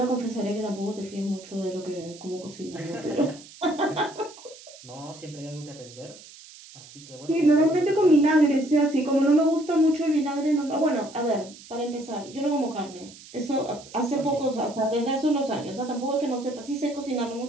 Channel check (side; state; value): right; noise; hiss, 19 dB below the sound